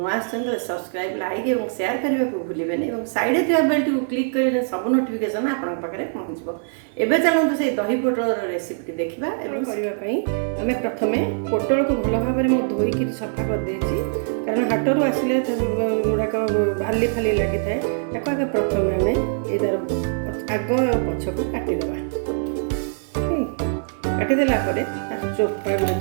तो सब्सक्राइब लाइक और शेयर करने को भूलें और साइड थी बेल को क्लिक कर सब नोटिफिकेशन आपन पाखे पहुँचो। एवं चलते से दही पोटल रेसिपी देखा करने आम प्रथम पोटल को भल भाव में धोईक सफा कर देछि कारण हाटरू आसिले गुड़ाक बाली फाली लगी था आगे प्रथम आम यार आग पछ को काटिदेवा काटिदेला तार चोपा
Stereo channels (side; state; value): left; silent; digital silence